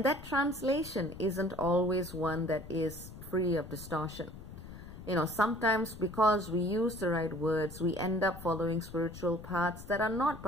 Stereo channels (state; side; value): noise; left; rumble, 14 dB below the sound